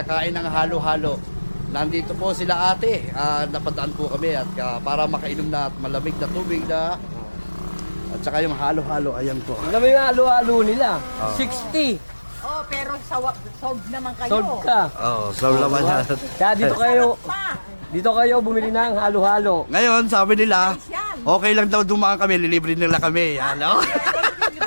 ng halo-halo. Nandito po sila ate, napadaan po kami at para makainom na at malamig na tubig na at saka yung halo-halo, ayan po. Alam mo yung halo-halo nila, 60. Oh, pero solve naman kayo. Solve ka. So laman yan. Kaya dito kayo bumili ng halo-halo. Ngayon, sabi nila, Yan. okay lang daw dumaan kami, lilibre nila kami. Ano?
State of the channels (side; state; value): both; inverted; correlation -1.00